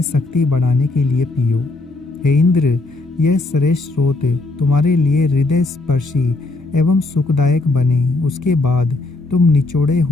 शक्ति बढ़ाने के लिए पियो। हे इंद्र, यह श्रेष्ठ स्रोत तुम्हारे लिए हृदय स्पर्शी एवं सुखदायक बने। उसके बाद तुम निचोड़े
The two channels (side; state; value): right; quieter; 3.2 dB